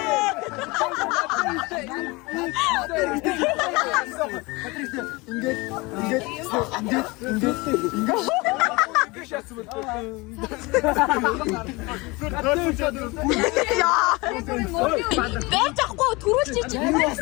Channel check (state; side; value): quieter; right; 24.6 dB